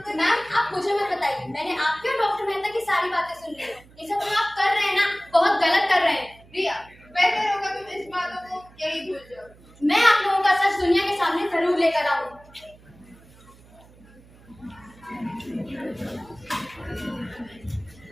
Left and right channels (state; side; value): noise; right; hum, 25 dB below the sound